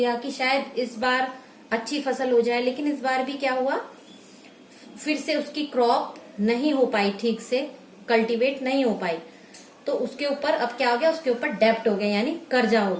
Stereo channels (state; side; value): identical; both; correlation 1.00